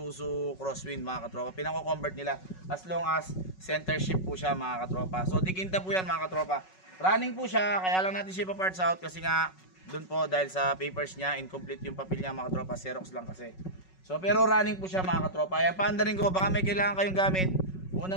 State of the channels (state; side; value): late; right; 5.4 ms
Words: Crosswind mga katropa. Pinako-convert nila as long as center shift po siya mga katropa. So dikinta po yan mga katropa. Running po siya, kaya lang natin siya pa-parts out kasi nga doon po dahil sa papers niya, incomplete yung papel niya mga katropa, Xerox lang kasi. So pero running po siya mga katropa. Ayan, paandarin ko, baka may kailangan kayong gamit.